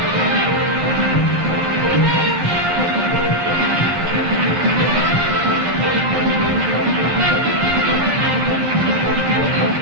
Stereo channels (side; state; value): left; late; 11 ms